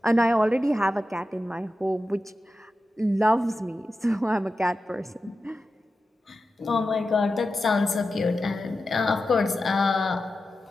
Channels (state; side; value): normal; both; correlation 0.92